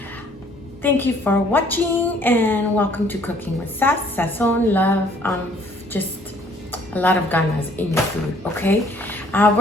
Thank you for watching and welcome to Cooking with Sass, Sazon, love, just a lot of ganas in your food, okay?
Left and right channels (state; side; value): normal; both; correlation 0.60